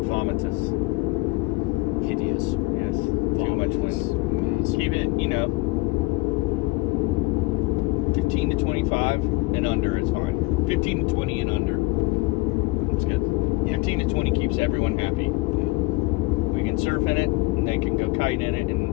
vomitous. Hideous. Yes. Too much wind. Massive. Keep it, 15 to 25 and under is fine. 15 to 20 and under. It's good. Yeah. 15 to 20 keeps everyone happy. Yeah. We can surf in it, and they can go kite in it,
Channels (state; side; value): quieter; right; 23.2 dB